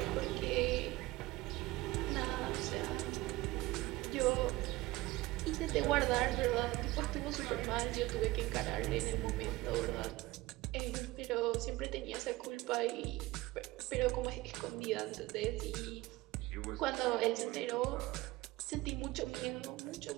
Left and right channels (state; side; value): quieter; left; 19.4 dB